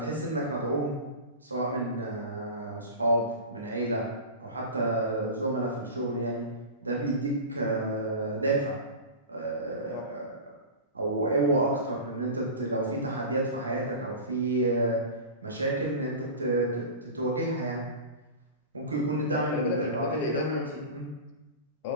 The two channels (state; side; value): inverted; both; correlation -0.30